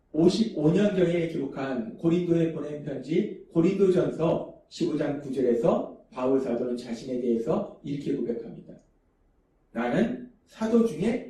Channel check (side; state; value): both; identical; correlation 1.00